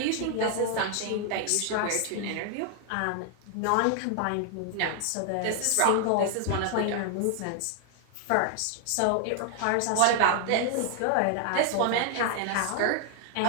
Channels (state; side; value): different; both; correlation 0.00